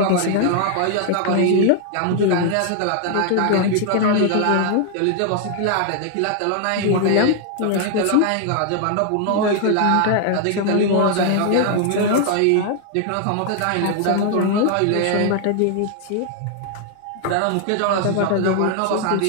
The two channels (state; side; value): different; both; correlation 0.00